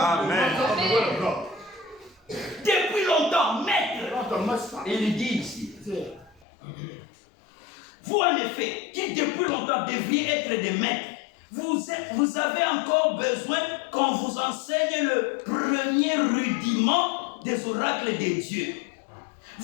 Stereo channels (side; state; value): right; drops out; at 6.5 s